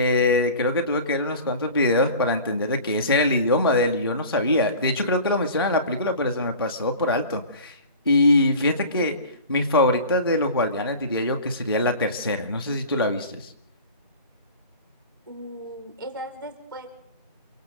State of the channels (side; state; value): both; inverted; correlation -0.39